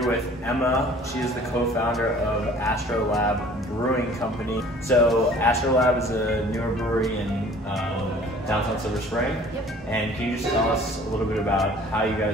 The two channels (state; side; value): normal; both; correlation 0.51